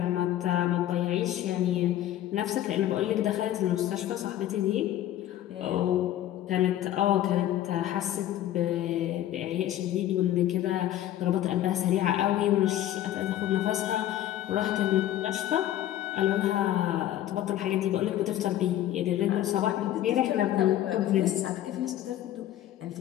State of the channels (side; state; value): right; quieter; 12.7 dB